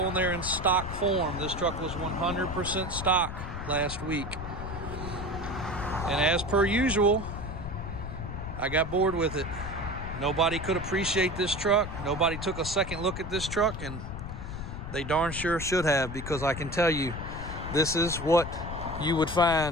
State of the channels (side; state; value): left; noise; rumble, 7 dB below the sound